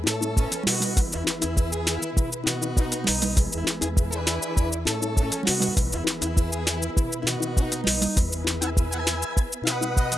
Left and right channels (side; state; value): both; normal; correlation 0.90